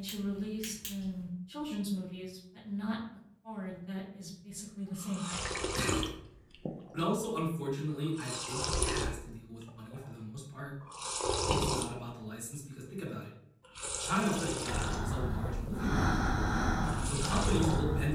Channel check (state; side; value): identical; both; correlation 1.00